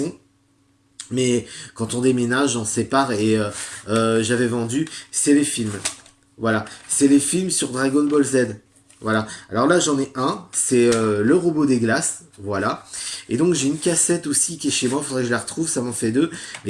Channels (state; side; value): identical; both; correlation 1.00